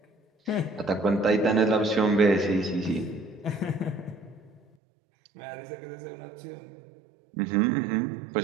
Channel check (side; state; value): left; drops out; at 4.6 s